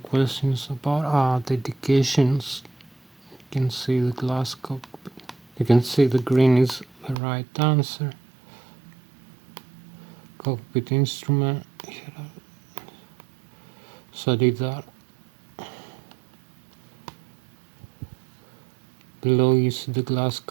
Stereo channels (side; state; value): left; drops out; at 7.2 s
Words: about dedications. You can see the glass cockpit. You can see the green is the right answer. Cockpit instrument. So I did that. Below you see the glass